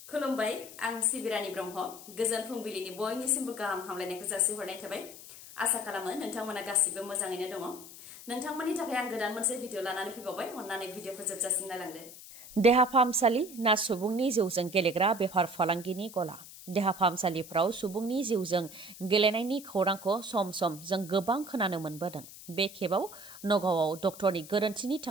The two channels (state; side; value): noise; left; hiss, 16 dB below the sound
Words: खुलुमबाय आं सिबिरानि ब्रह्म गोजोन फुंबिलिनि बयनिसिमबो गाहाम हामलायनायखौ जासिहरनाय थाबाय आसा खालामो नोंथांमोना गासिबो मोजाङैनो दङ नोंथांमोननि थाखाय आं गोदान मोनसे भिडिअ लानानै फैबावबाय अन्नानै भिडिअखौ जोबजासिम नायलांदो देहा फाहामसालि ना सुबुंनि जिउजों गेलेग्रा बेफार फालांगिनि गला देहा फाहामसालिफ्राव सुबुंनि जिउजों गेलेनायनि खौरांखौ सम सम जों गोबां खोनानो मोनबोदों बे खेबाव नगावआव डक्टरनि गोरोन्थिनि